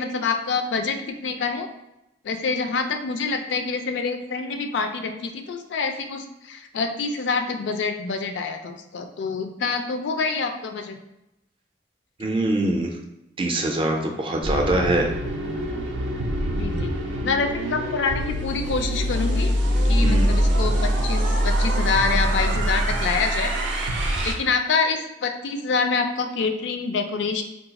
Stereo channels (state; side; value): normal; both; correlation 0.44